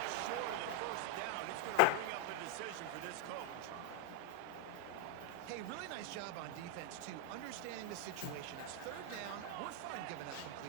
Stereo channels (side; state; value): both; different; correlation 0.00